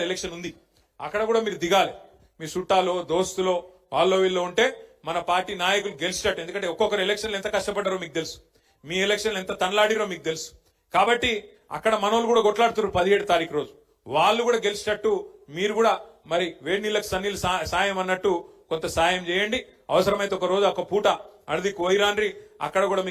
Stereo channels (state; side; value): identical; both; correlation 1.00